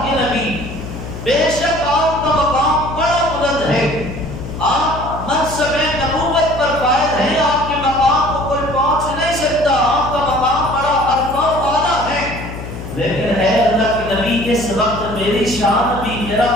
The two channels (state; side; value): noise; left; hum, 9 dB below the sound